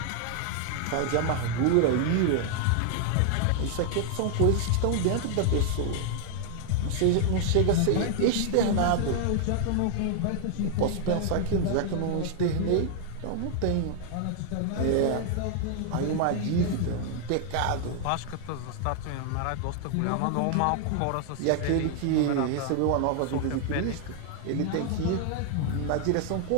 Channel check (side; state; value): both; different; correlation 0.00